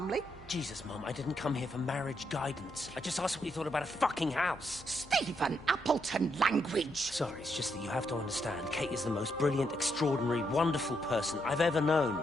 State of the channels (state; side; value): normal; both; correlation 0.78